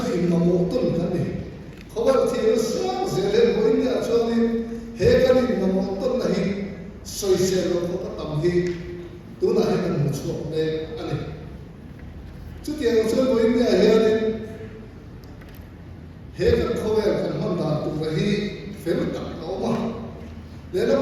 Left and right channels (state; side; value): identical; both; correlation 1.00